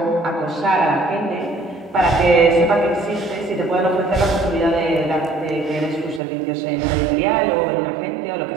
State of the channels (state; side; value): drops out; left; at 6.2 s